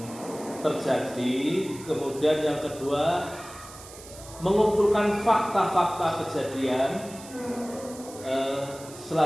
terjadi, kemudian yang kedua mengumpulkan fakta-fakta kejadian.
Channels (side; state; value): right; noise; hiss, 17 dB below the sound